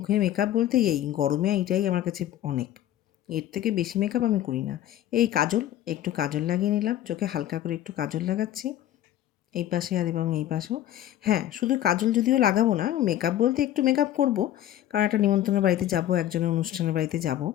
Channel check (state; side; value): quieter; right; 12.4 dB